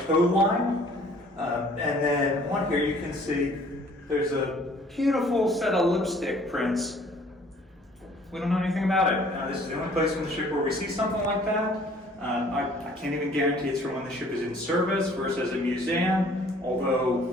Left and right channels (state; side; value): normal; both; correlation 0.56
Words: line. And then on here you can see there's a beautiful set of lipstick prints. We don't know anything about it. This is the only place on the ship where we see something like that. I can't even guarantee it's from when the ship is in service versus a museum,